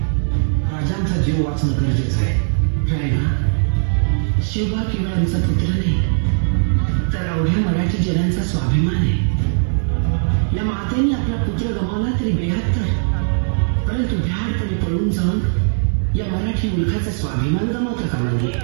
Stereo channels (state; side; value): silent; left; 65 dB below the other